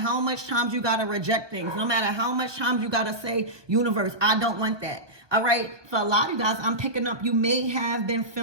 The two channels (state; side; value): late; left; 1.2 ms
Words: much times you got to reject things, no matter how much times you got to say, universe, I don't want that. All right. For a lot of you guys, I'm picking up, you may have been